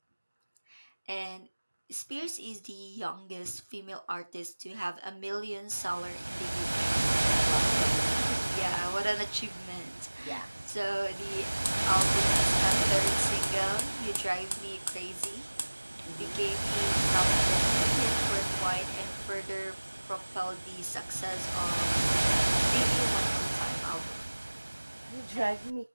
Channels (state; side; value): inverted; both; correlation -1.00